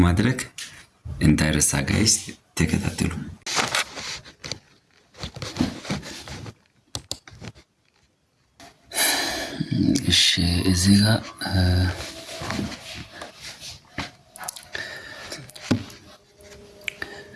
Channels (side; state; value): both; identical; correlation 1.00